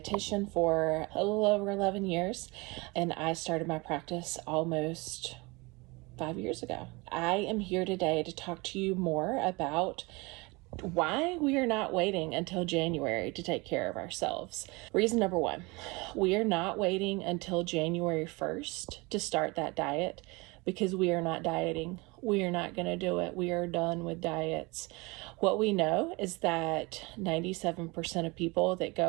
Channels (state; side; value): quieter; left; 25.7 dB